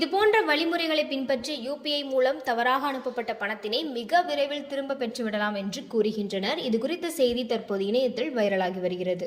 போன்ற வழிமுறைகளை பின்பற்றி யூபிஐ மூலம் தவறாக அனுப்பப்பட்ட பணத்தினை மிக விரைவில் திரும்ப பெற்றுவிடலாம் என்று கூறுகின்றனர். இது குறித்த செய்தி தற்போது இணையத்தில் வைரலாகி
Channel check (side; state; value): both; identical; correlation 1.00